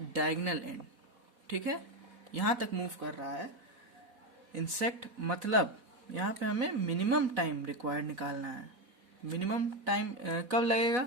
डायगोनल एंड, ठीक है, यहां तक मूव कर रहा है इंसेक्ट। मतलब यहाँ पे हमें मिनिमम टाइम रिक्वायर्ड निकालना है। मिनिमम टाइम कब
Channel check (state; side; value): late; left; 4.1 ms